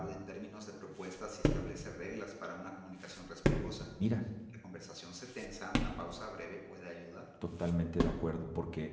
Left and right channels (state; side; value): identical; both; correlation 1.00